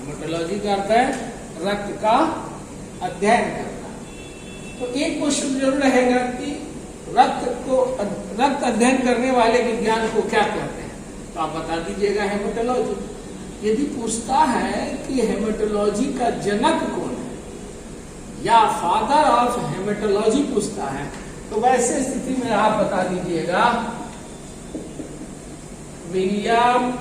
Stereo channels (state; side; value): identical; both; correlation 1.00